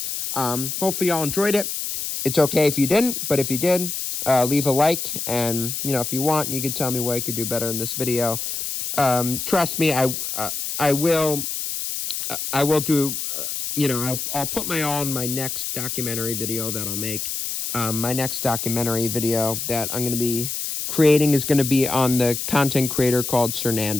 Hopefully y'all enjoyed it. It's okay if you didn't, but if you did, leave a like. And, if you want, you can tell me what I could do better in this video. Trust me, I will do, I'll put my all in my next documentary video that I'll make. My next documentary video that I'm going to be creating is going to be on the content creator called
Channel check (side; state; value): left; noise; hiss, 4 dB below the sound